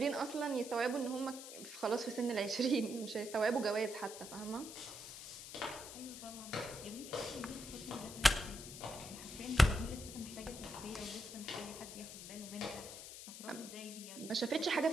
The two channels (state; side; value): noise; left; hiss, 11 dB below the sound